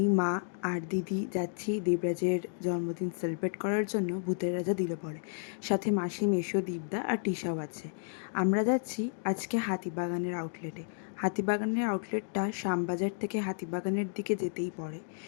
মা আর দিদি যাচ্ছি দেবরাজের জন্মদিন সেলিব্রেট করার জন্য ভূতের রাজা দিলে পড়ে। সাথে মাসি, মেশো, দীপদা আর টিশাও আছে। আমরা যাচ্ছি আজকে হাতিবাগানের আউটলেটে। হাতিবাগানের আউটলেটটা শ্যামবাজার থেকে হাতিবাগানের দিকে যেতেই পড়ে।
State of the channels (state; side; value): silent; right; digital silence